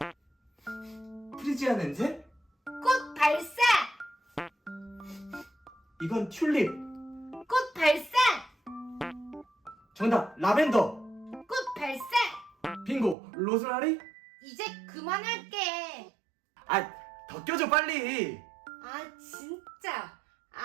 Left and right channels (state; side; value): drops out; left; at 13.2 s